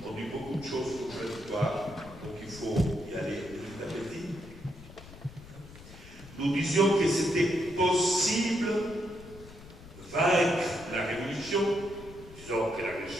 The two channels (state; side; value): noise; left; rumble, 18 dB below the sound